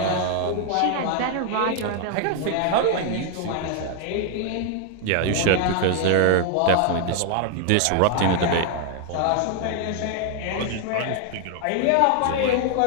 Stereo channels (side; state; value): both; different; correlation 0.00